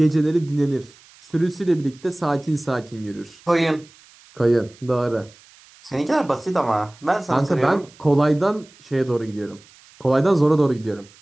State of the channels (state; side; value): noise; right; hiss, 26 dB below the sound